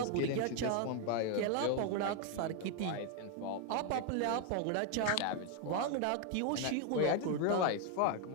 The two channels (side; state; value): both; different; correlation 0.01